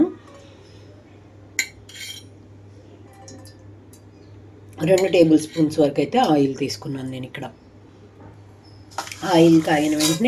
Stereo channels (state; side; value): identical; both; correlation 1.00